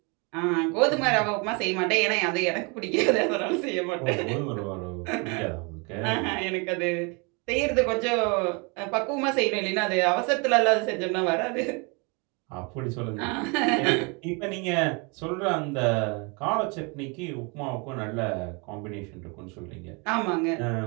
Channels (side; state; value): left; quieter; 31.2 dB